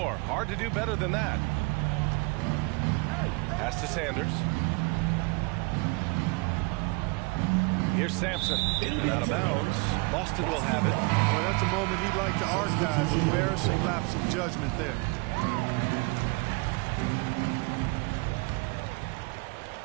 Hard to do better than that. Pass to Sanders. Here's Sampson. And out of bounds. Boston will have it. Well, that's a moment he'd like to archive. Embarrassing lapse of judgment there.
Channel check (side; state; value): left; quieter; 28.3 dB